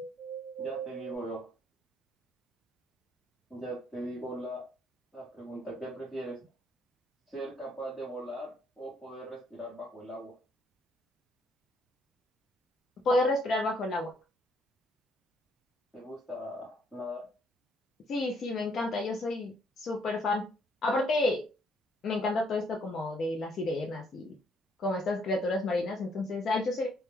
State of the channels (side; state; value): both; normal; correlation 0.69